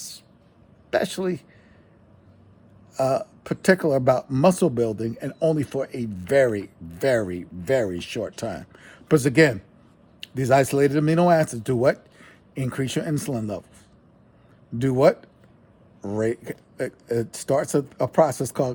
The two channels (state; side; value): identical; both; correlation 1.00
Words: particular about muscle building, and only for a very, very, very short time. Because again, these isolated amino acids do what? Increase your insulin levels. Do what? It starts a process